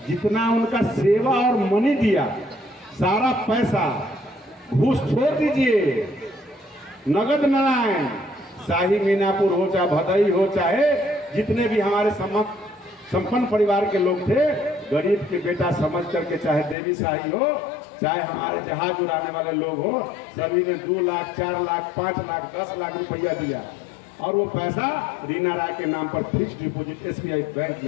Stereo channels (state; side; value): drops out; right; at 16.8 s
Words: जितना उनका सेवा और मनी दिया, सारा पैसा घूस छोड़ दीजिए, नगद नारायण, शाही मीनापुर हो चाहे भदई हो, चाहे जितने भी हमारे संपन्न परिवार के लोग थे, गरीब के बेटा समझ करके, चाहे देवी शाही हो, चाहे हमारे जहाज उड़ाने वाले लोग हो, सभी ने 2 लाख 4 लाख 5 लाख 10 लाख रुपया दिया और वो पैसा रीना राय के नाम पर फिक्स डिपॉजिट SBI बैंक